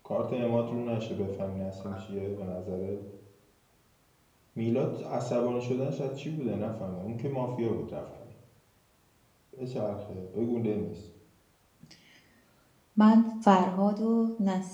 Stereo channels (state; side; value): identical; both; correlation 1.00